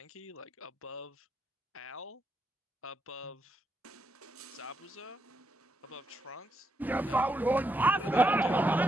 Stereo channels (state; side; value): normal; both; correlation 0.81